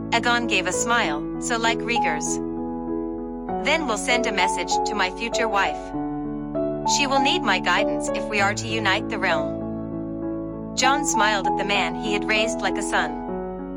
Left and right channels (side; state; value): both; identical; correlation 1.00